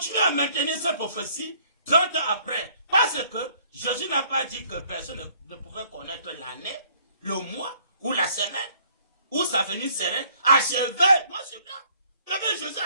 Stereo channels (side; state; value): both; inverted; correlation -0.61